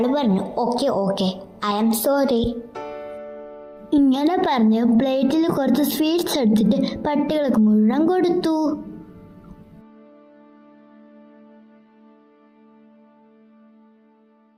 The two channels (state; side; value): identical; both; correlation 1.00